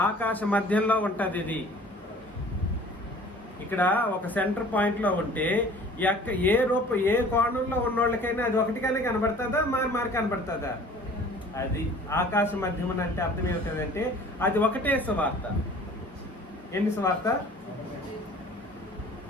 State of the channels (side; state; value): both; normal; correlation 0.48